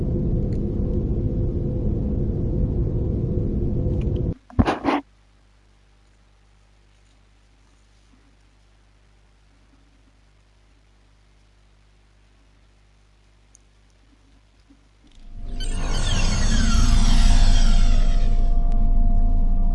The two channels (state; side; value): identical; both; correlation 1.00